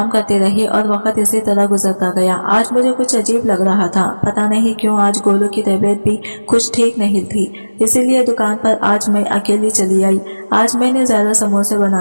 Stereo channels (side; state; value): both; inverted; correlation -1.00